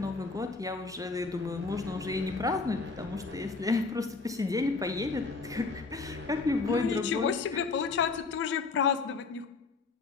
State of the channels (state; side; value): quieter; right; 4.2 dB